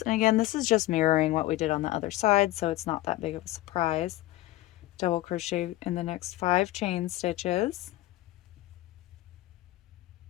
again, this is just mirroring what we did on the other side, so it's not that big of a surprise. Double crochet in the next 5 chain stitches.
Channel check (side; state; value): right; quieter; 16.9 dB